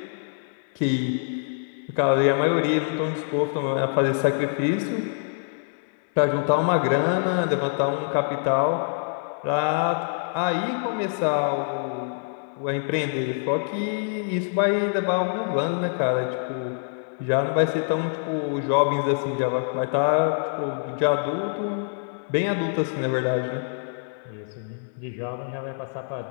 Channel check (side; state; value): right; silent; digital silence